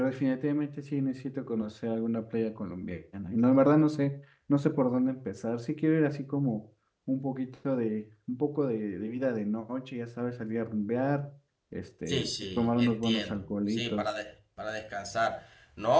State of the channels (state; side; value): identical; both; correlation 1.00